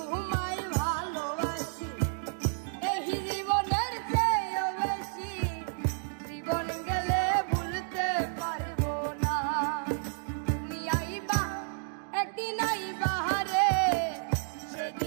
ভালোবাসি এই জীবনের চেয়েও বেশি, জীবন গেলে ভুলতে পারব না। তুমি আইবা একদিন আইবা রে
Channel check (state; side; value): silent; left; digital silence